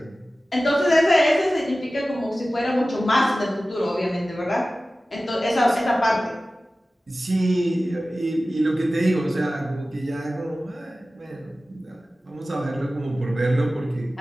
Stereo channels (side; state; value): both; normal; correlation 0.96